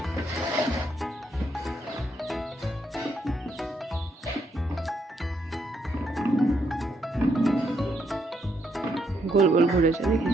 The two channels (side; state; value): both; normal; correlation 0.76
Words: গোল গোল ঘুরেছে,